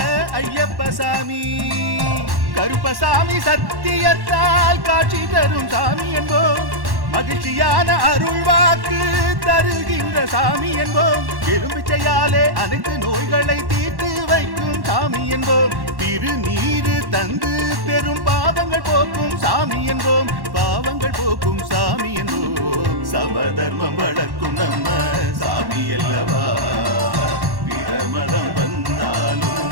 ஐயப்பசாமி. கருப்பசாமி சத்தியத்தால் காட்சி தரும் சாமி என்போம், மகிழ்ச்சியான அருள் வாக்கு தருகின்ற சாமி என்போம். எலும்பிச்சையாலே அனைத்து நோய்களை தீர்த்து வைக்கும் சாமி என்போம். திருநீரு தந்து பெரும் பாவங்கள் போக்கும் சாமி என்போம், பாவங்கள் போக்கும் சாமி என்போம். சமதர்மம் வளர்க்கும் நம்ம சாமி அல்லவா, பிரமதம் வந்தாலும்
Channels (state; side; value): late; left; 1.1 ms